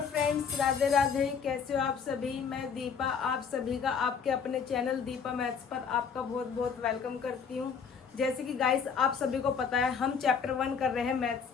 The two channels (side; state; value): right; quieter; 6.4 dB